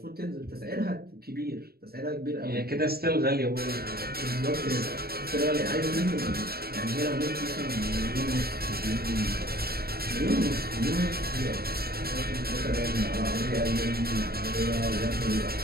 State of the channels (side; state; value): left; late; 0.45 ms